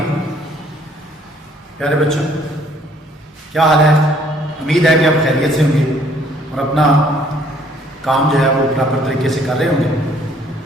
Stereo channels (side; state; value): both; normal; correlation 0.62